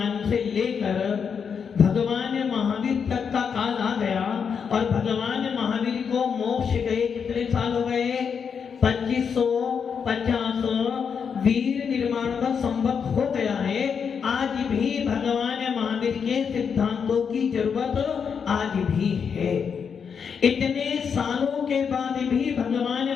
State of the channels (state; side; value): quieter; right; 6.6 dB